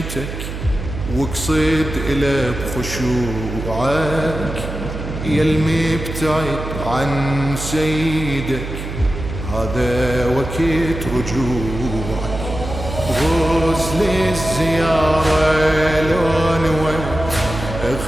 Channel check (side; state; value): right; noise; hum, 7 dB below the sound